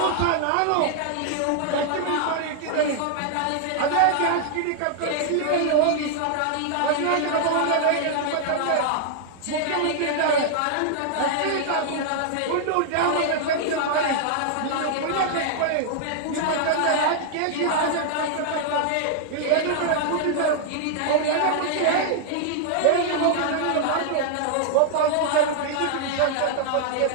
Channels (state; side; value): different; both; correlation -0.01